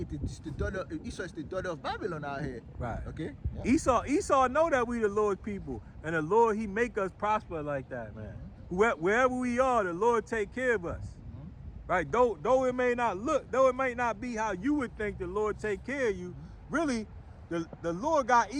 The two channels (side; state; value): both; identical; correlation 1.00